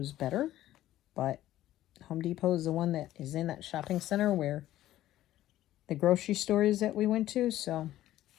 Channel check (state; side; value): quieter; right; 14.0 dB